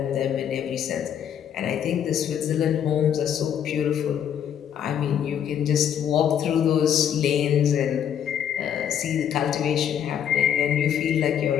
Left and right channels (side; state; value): right; quieter; 9.2 dB